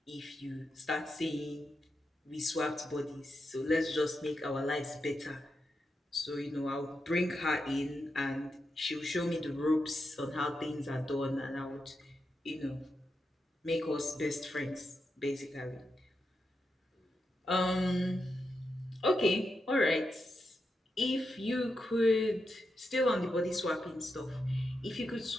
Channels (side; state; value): both; normal; correlation 0.86